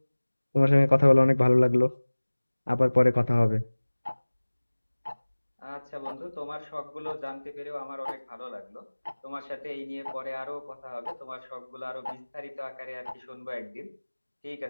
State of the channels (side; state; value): both; inverted; correlation -1.00